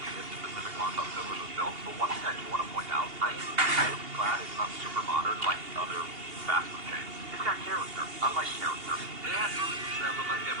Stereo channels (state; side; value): late; left; 2.8 ms